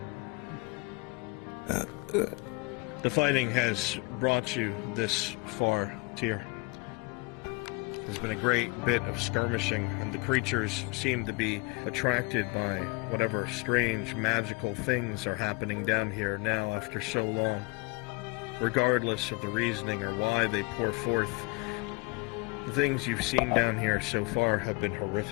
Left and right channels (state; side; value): quieter; right; 27.6 dB